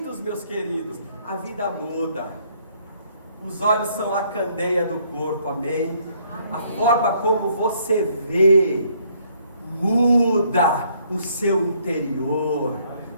meus queridos. A vida muda, os olhos são a candeia do corpo, amém? A forma como você vê muda o seu interior.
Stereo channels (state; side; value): inverted; both; correlation -0.66